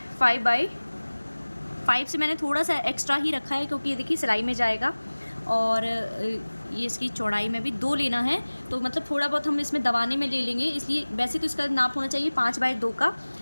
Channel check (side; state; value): both; inverted; correlation -1.00